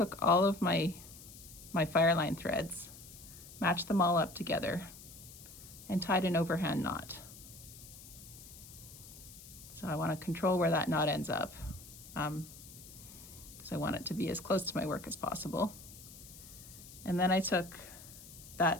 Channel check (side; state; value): left; noise; hiss, 17 dB below the sound